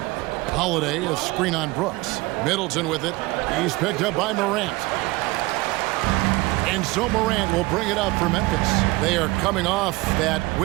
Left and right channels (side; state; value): left; quieter; 21.9 dB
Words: Holiday, a screen on Brooks. Middleton with it. He's picked up by Morant. And so Morant will bring it up for Memphis. They are coming off that